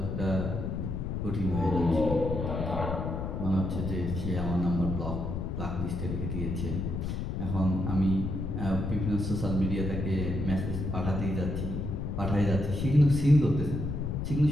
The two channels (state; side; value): noise; left; rumble, 3 dB below the sound